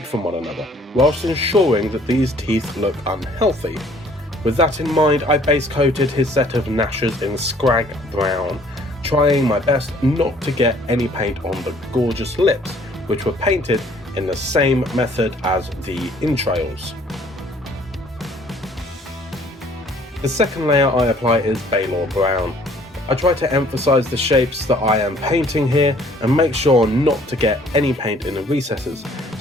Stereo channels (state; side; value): normal; both; correlation 0.58